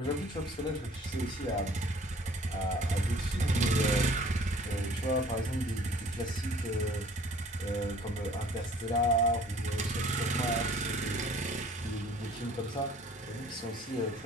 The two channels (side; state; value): both; normal; correlation 0.53